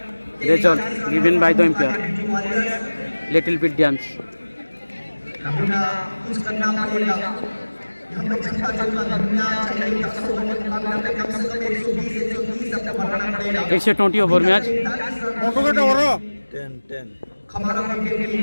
result given by the umpire. Little bit dance. It's a 20 over match. 10.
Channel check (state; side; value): inverted; both; correlation -1.00